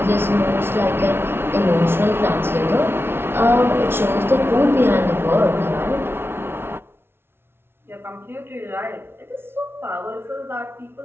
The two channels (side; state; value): left; late; 0.11 ms